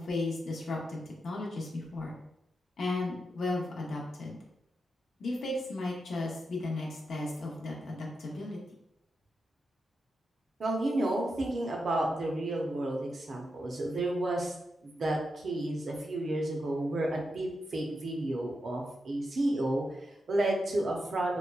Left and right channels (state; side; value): normal; both; correlation 0.86